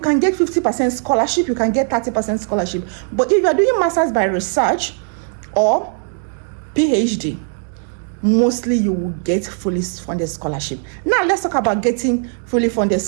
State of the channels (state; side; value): silent; left; 58 dB below the other